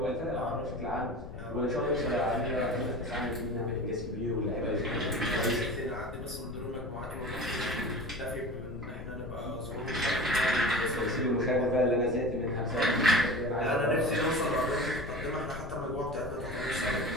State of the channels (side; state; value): left; noise; rumble, 11 dB below the sound